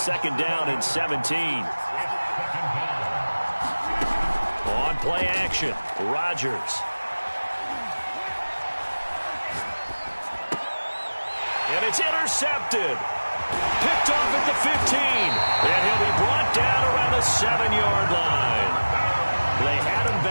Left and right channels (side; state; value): both; inverted; correlation -1.00